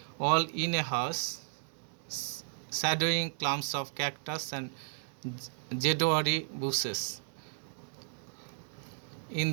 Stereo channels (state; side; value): silent; left; digital silence